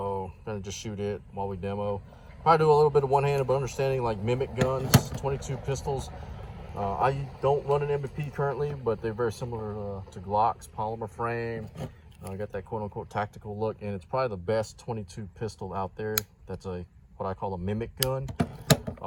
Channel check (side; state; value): both; identical; correlation 1.00